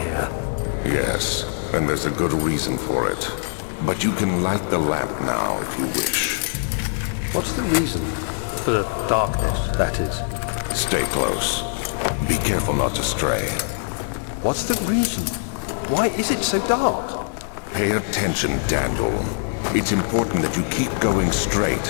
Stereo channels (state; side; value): silent; right; digital silence